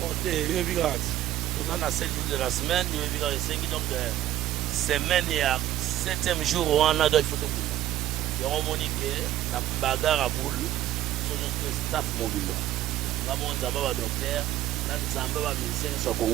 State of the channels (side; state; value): left; quieter; 13.4 dB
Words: t'es vigrate on a 7 jours de la semaine il vigrate 5 donc semaine il y a 7e jour on a deux photos et on monique la bagarre à boule sur notre staff mobile Ramon Zamba docteur, nan Zamba musicien sur